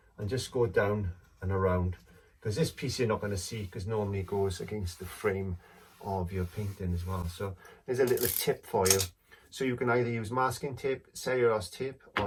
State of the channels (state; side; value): identical; both; correlation 1.00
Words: and just go down and around. Because this piece you're not going to see, because normally it goes against the frame of your painting as well. So there's a little tip for you. So you can either use masking tape, cellulose tape,